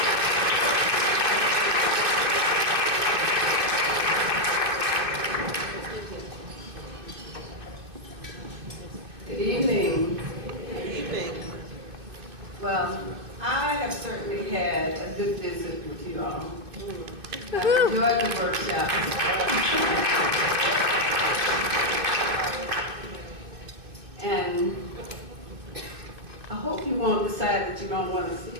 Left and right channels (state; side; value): late; left; 2.6 ms